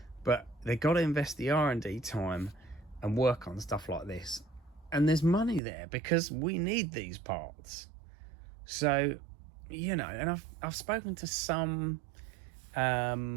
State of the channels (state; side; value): drops out; left; at 5.6 s